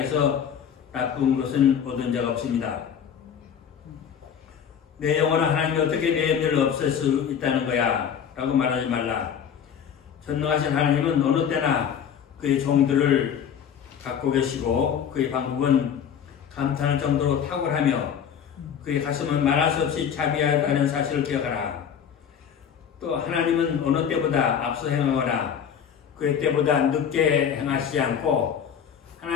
나쁜 것은 얻은 적 없습니다. 내 영혼은 하나님이 어떻게 내 염려를 없앨 수 있다는 거야 라고 말하지 말라. 전능하신 하나님은 어느 때나 그의 종들을 갖고 계시고 그의 방법은 감탄할 정도로 탁월하며 그의 가슴은 말할 수 없이 자비하다는 사실을 기억하라. 또 하나님은 어느 때보다 앞서 행하거나 그의 때보다 늦게 행하시지 않고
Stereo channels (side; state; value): right; quieter; 8.1 dB